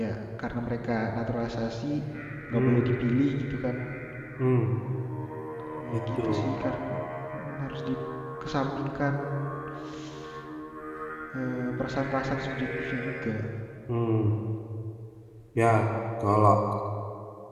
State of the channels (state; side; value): identical; both; correlation 1.00